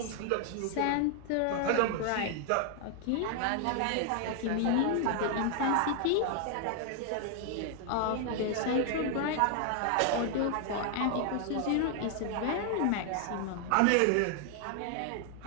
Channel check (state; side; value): different; both; correlation 0.00